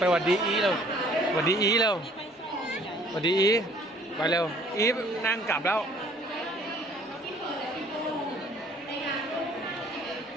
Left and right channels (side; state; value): both; normal; correlation 0.56